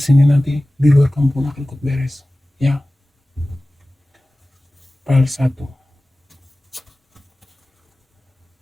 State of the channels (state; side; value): normal; both; correlation 0.97